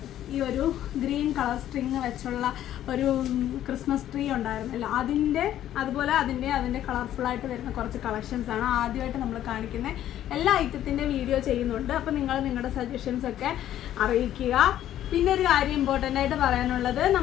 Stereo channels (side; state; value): right; quieter; 11.9 dB